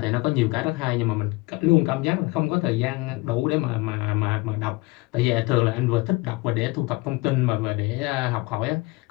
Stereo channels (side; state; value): right; quieter; 23.1 dB